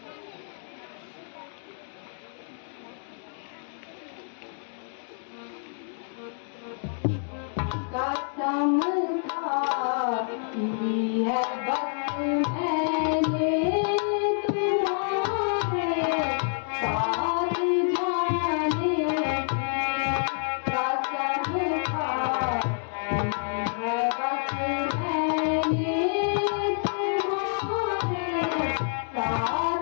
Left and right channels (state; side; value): silent; right; 59 dB below the other